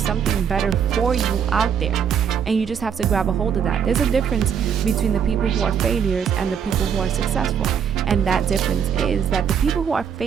better for you out there. and you just have to grab a hold of that. There's a difference between the people who are failures and the people who are successful, and that difference is that the people who are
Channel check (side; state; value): left; quieter; 7.8 dB